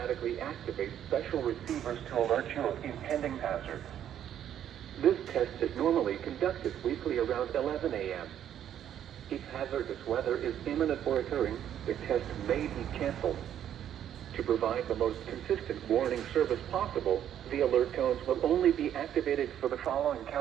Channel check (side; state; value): left; quieter; 10.3 dB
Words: activate special receivers to alert you of impending hazards. This test is normally conducted weekly around 11 a.m. If hazardous weather is imminent or occurring, the test may be canceled. To provide the most consistent warning service possible, the alert tones will only be activated for the following